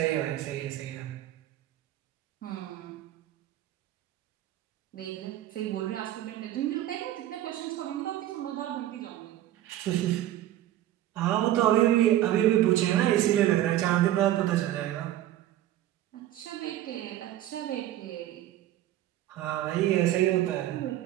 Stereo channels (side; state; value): left; quieter; 13.4 dB